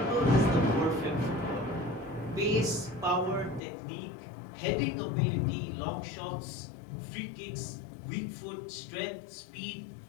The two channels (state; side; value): drops out; right; at 3.6 s